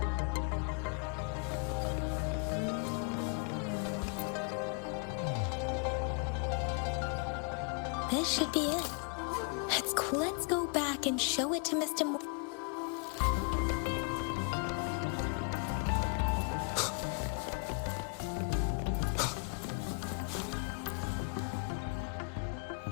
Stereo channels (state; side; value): quieter; right; 36.9 dB